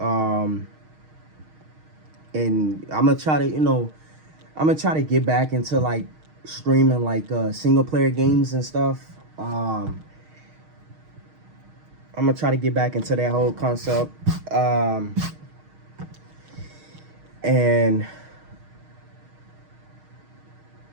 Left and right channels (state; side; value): late; left; 6.4 ms